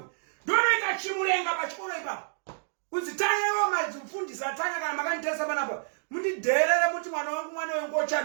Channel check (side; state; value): left; silent; digital silence